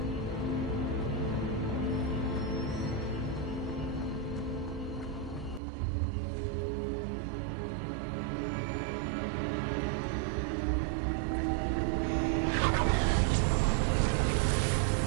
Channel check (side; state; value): left; drops out; at 5.6 s